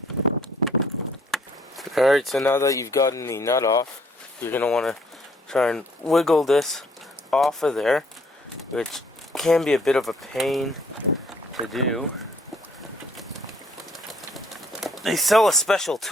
Alright, so now that you've gotten the nut off, you're going to want to try and wiggle this off of there, which can be a bit of a pain to do. They sell a special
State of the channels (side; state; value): both; normal; correlation 0.63